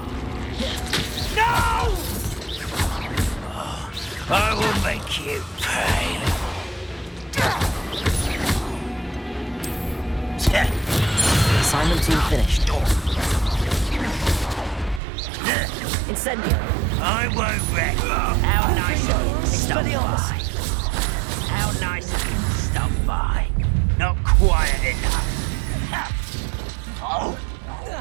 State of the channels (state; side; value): drops out; left; at 15.0 s